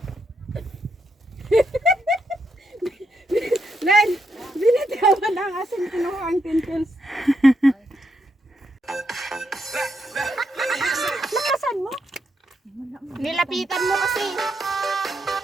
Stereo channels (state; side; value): normal; both; correlation 0.80